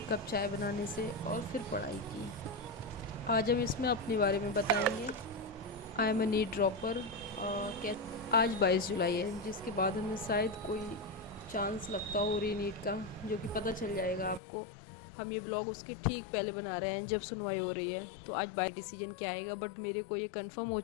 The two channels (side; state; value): right; drops out; at 14.4 s